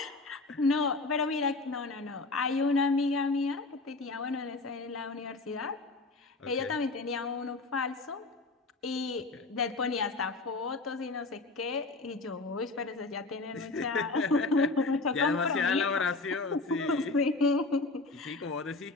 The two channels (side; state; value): right; quieter; 3.4 dB